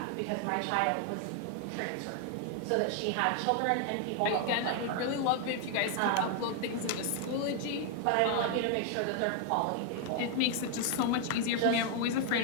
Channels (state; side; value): different; both; correlation 0.01